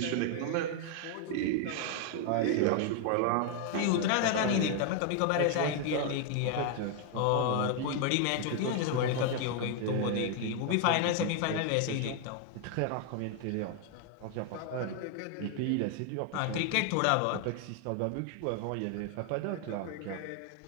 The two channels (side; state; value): both; different; correlation 0.00